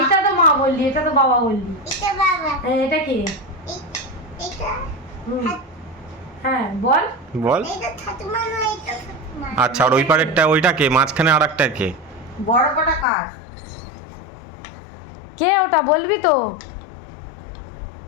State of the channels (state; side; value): drops out; right; at 13.1 s